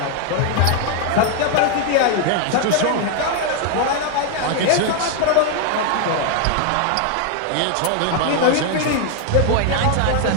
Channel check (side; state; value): both; different; correlation 0.00